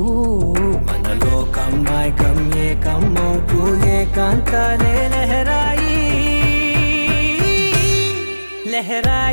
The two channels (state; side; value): inverted; both; correlation -1.00